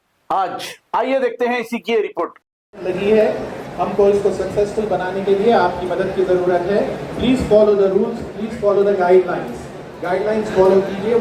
आज आइए देखते हैं इसी की रिपोर्ट। लगी है, हमको इसको सक्सेसफुल बनाने के लिए आपकी मदद की जरूरत है। Please follow the rules, please follow the guidelines follow कीजिए।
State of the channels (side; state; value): both; identical; correlation 1.00